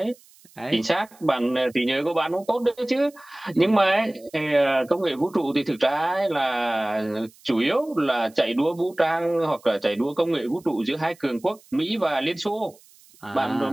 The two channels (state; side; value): noise; right; hiss, 27 dB below the sound